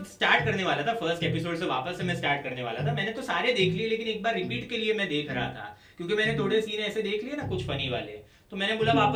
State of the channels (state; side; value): identical; both; correlation 1.00